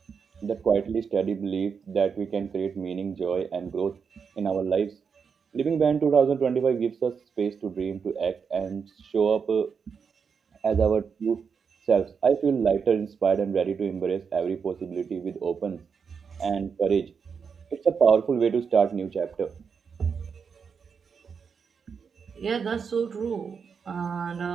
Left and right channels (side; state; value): left; quieter; 6.1 dB